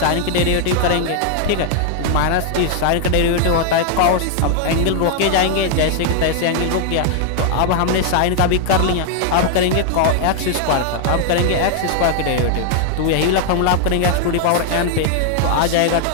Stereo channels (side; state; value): both; different; correlation 0.00